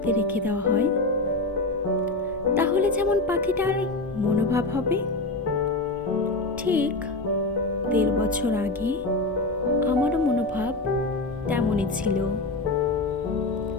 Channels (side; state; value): right; quieter; 3.0 dB